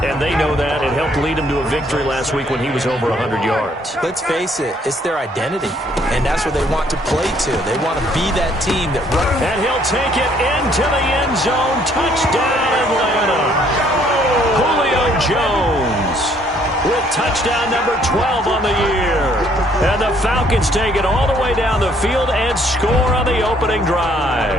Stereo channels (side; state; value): both; normal; correlation 0.64